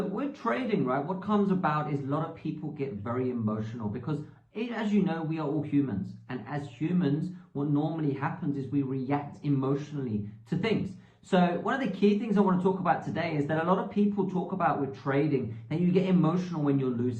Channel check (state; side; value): identical; both; correlation 1.00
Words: with trading, right, what comes about is a lot of people get very emotional because as you know, we are all humans. And as humans, what normally happens is we react emotionally to things. So one of the key things I want to talk about today is that a lot of people talk about with trading that you get emotional when you're